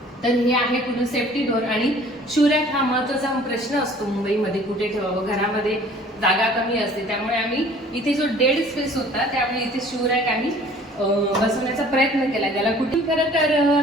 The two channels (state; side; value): normal; both; correlation 0.52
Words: तर हे आहे पूर्ण सेफ्टी डोअर. आणि शूरॅक हा महत्वाचा प्रश्न असतो मुंबईमध्ये, कुठे ठेवावं, घरामध्ये जागा कमी असते, त्यामुळे आम्ही इथे जो डेड स्पेस होता त्यामुळे इथे शूरॅक आम्ही बसवण्याचा प्रयत्न केला. त्याला कुठे खरं तर